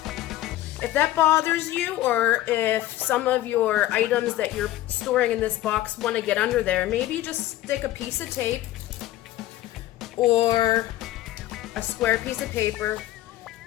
If that bothers you, or if some of your items that you're storing in this box want to get under there, maybe just stick a piece of tape or a square piece of paper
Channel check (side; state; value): right; quieter; 15.1 dB